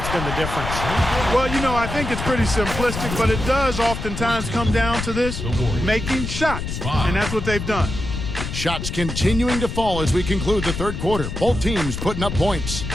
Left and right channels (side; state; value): left; noise; rumble, 5 dB below the sound